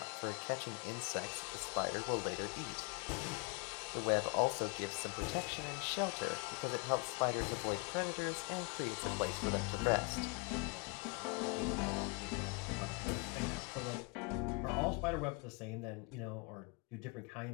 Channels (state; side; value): quieter; right; 32.2 dB